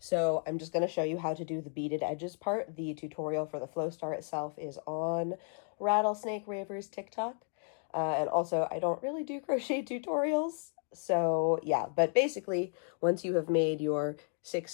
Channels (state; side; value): silent; right; 55 dB below the other